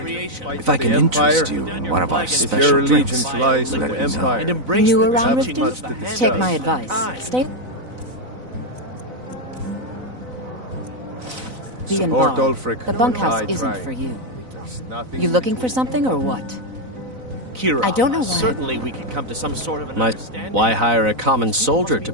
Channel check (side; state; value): left; late; 4.0 ms